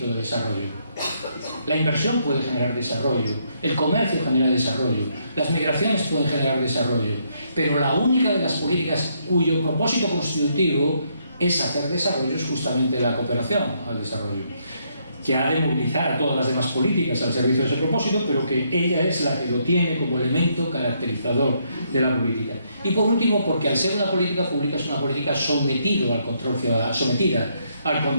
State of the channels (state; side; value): inverted; both; correlation -0.74